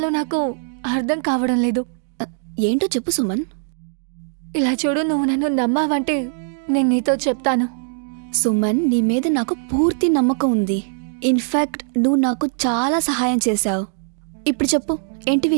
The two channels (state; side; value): silent; left; digital silence